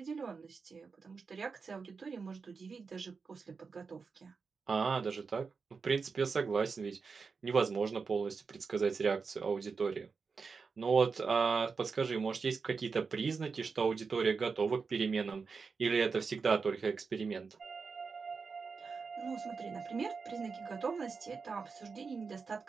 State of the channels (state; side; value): quieter; left; 5.0 dB